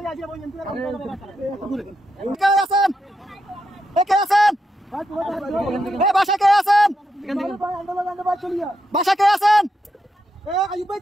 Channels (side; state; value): both; normal; correlation 0.84